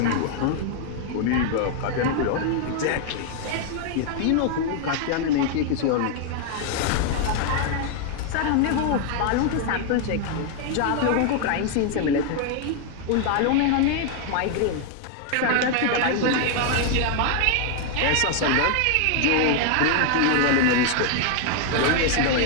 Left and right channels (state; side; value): different; both; correlation 0.00